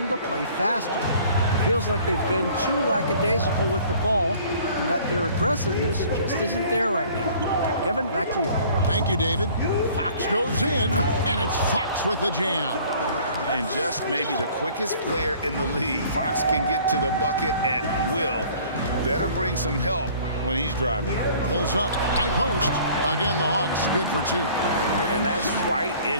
to play faster. It feels like they've been too lackadaisical with the ball, and that their aggressiveness just isn't there right now. Kevin, back to you. Thank you, David. Fox goes in, and it's Fox with the jam. And just maybe the quickest player in the league. Fox can get to the bucket at will. Better bring some help when he's driving. Pulls up, high post. Again, the Hawks good for 2. And that's right in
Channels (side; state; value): both; inverted; correlation -0.52